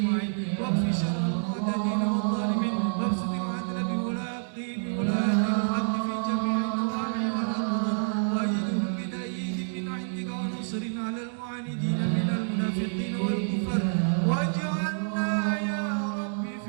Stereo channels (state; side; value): silent; left; digital silence